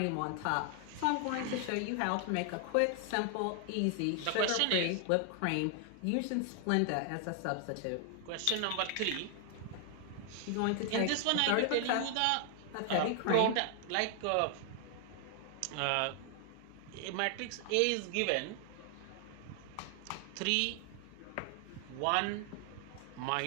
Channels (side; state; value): both; different; correlation 0.00